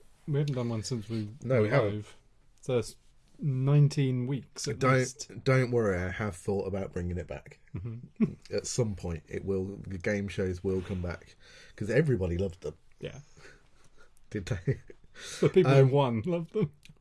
we haven't done one since we haven't. So it's 19 weeks at least. Don't worry, I have thought about bringing it back. Mm-hmm. At some point, the game shows will come back because everybody loved them. Yeah. Did they? The people who won loved them.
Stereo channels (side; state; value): both; identical; correlation 1.00